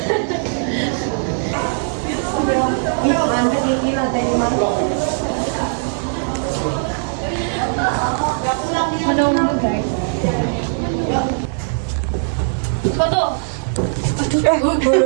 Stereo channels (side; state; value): left; silent; digital silence